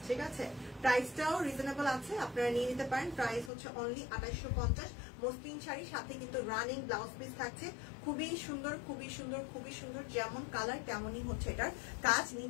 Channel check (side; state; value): right; drops out; at 3.5 s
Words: ঠিক আছে, প্রাইসটাও রিজনেবল আছে, আপনারা নিয়ে নিতে পারেন। প্রাইস হচ্ছে অনলি 2850। মসলিন শাড়ি, সাথে কিন্তু রানিং ব্লাউজ পিস থাকছে। খুবই সুন্দর, খুবই সুন্দর, খুবই সুন্দর, যেমন কালার তেমনই হচ্ছে এটার কাজ।